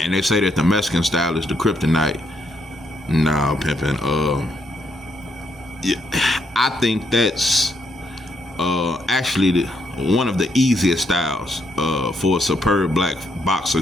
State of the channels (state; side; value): normal; both; correlation 0.75